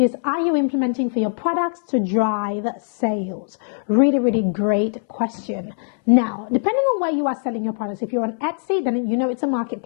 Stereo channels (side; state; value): right; silent; 65 dB below the other